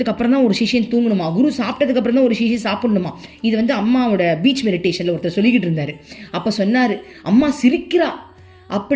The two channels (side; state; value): both; identical; correlation 1.00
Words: அப்புறம் தான் ஒரு சிஷியன் தூங்கணுமா, குரு சாப்பிட்டதுக்கு அப்புறம் தான் ஒரு சிஷியன் சாப்பிடணுமா. இது வந்து அம்மாவோட பீச் மெடிடேஷனில் ஒருத்தர் சொல்லிக்கிட்டு இருந்தார். அப்போ சொன்னார், அம்மா சிரிக்கிறா